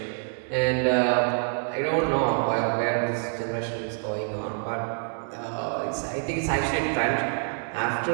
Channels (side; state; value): left; silent; 60 dB below the other